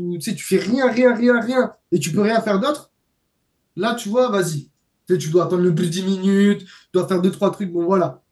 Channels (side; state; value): both; identical; correlation 1.00